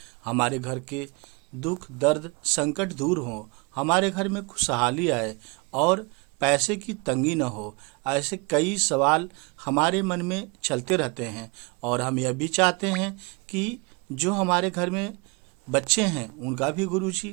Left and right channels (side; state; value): left; quieter; 29.1 dB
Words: हमारे घर के दुख दर्द संकट दूर हो, हमारे घर में खुशहाली आए और पैसे की तंगी न हो। ऐसे कई सवाल हमारे मन में चलते रहते हैं और हम यह भी चाहते हैं कि जो हमारे घर में बच्चे हैं उनका भी